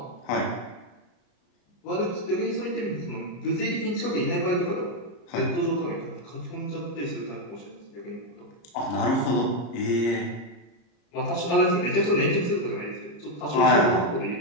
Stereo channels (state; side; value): late; right; 34 ms